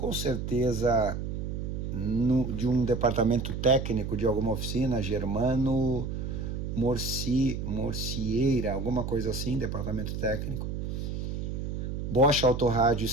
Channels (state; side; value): noise; right; hum, 4 dB below the sound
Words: certeza de um departamento técnico de alguma oficina, Germano Morcieira, alguma coisa assim, departamento técnico. Bosch Autorádio